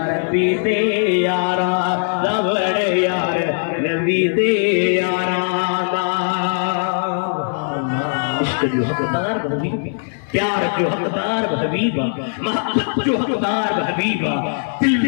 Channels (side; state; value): right; silent; digital silence